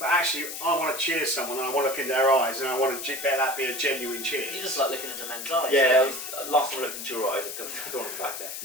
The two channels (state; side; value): noise; left; hiss, 7 dB below the sound